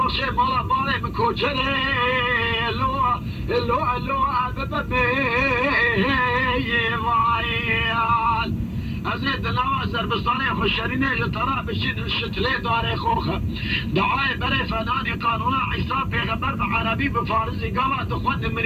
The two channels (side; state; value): both; identical; correlation 1.00